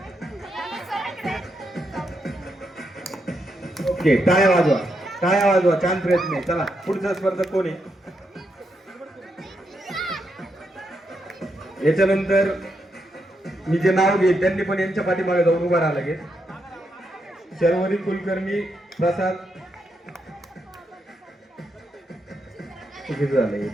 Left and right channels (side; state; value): both; normal; correlation 0.81